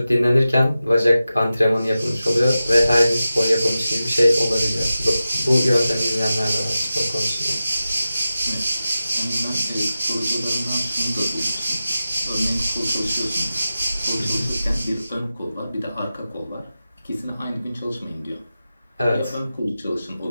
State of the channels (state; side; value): inverted; both; correlation -0.94